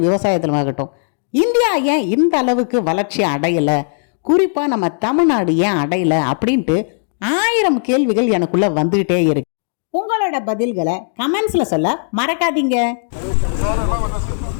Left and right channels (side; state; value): right; silent; 68 dB below the other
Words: விவசாயத்திலும் ஆகட்டும். இந்தியா ஏன் இந்த அளவுக்கு வளர்ச்சி அடையலை, குறிப்பாக நம்ம தமிழ்நாடு ஏன் அடையலை அப்படின்ட்டு 1000 கேள்விகள் எனக்குள்ளே வந்துக்கிட்டே இருக்கு. உங்களோட பதில்களை கமெண்ட்ஸில் சொல்ல மறக்காதீங்க.